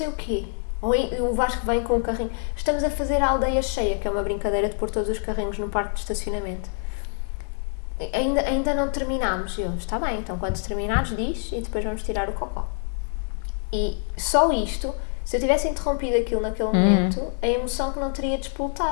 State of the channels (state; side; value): silent; right; 58 dB below the other